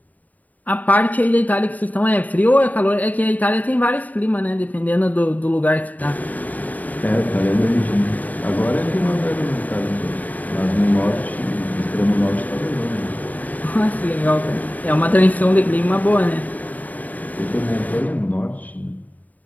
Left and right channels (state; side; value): late; right; 0.077 ms